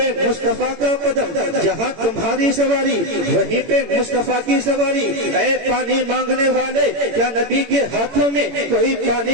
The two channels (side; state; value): left; late; 18 ms